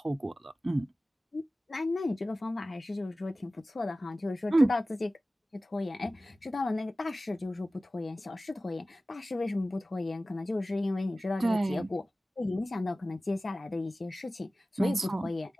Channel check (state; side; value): normal; both; correlation 0.96